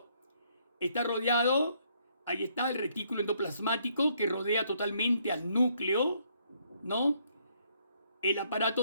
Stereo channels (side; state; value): both; inverted; correlation -0.69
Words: Está rodeado, ahí está el retículo endoplasmático que rodea totalmente al núcleo, ¿no? El aparato